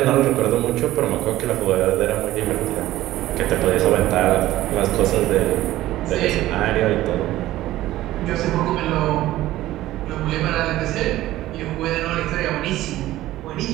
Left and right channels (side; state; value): left; quieter; 15.3 dB